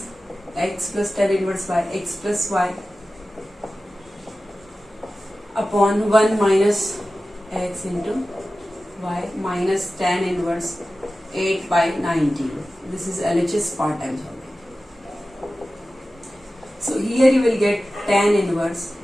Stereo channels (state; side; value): normal; both; correlation 0.95